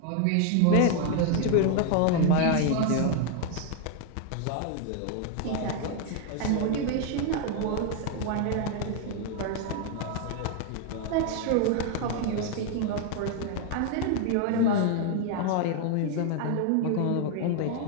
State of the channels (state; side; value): different; both; correlation 0.01